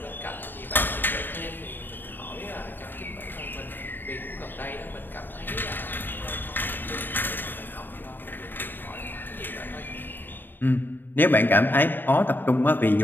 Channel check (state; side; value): late; right; 0.093 ms